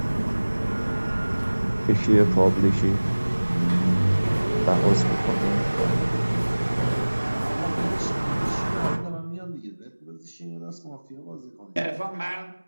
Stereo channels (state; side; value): inverted; both; correlation -1.00